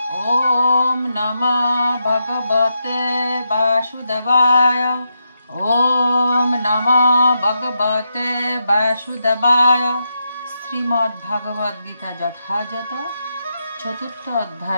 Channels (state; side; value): inverted; both; correlation -0.84